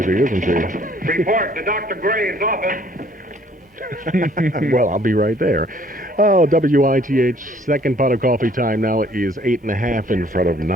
isn't she? Report to Dr. Gray's office. Well, I'll be right there. Oh, WITH, second pot of coffee time now is 8:30 in front of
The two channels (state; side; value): normal; both; correlation 0.60